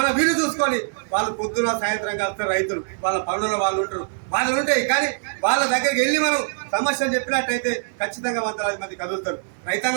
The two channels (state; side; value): silent; left; 63 dB below the other